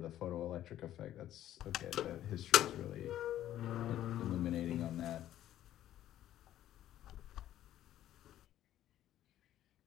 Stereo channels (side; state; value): right; quieter; 12.5 dB